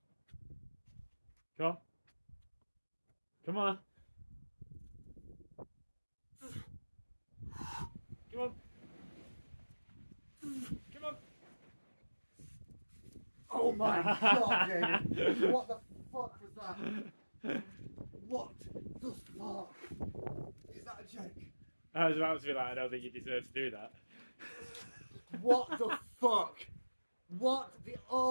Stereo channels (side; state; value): both; inverted; correlation -1.00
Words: Come on. Come on. Come on. Come on. Oh my god, David. What the fuck was that? What the fuck? Is that a joke? I was about to be like, I don't think you deserve to do that. What the fuck? What the...